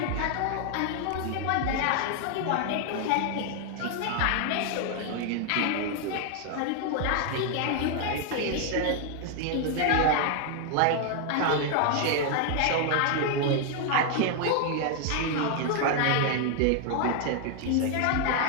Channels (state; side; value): different; both; correlation 0.00